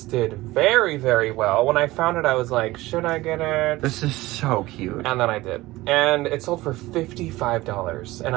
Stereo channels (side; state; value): left; quieter; 18.8 dB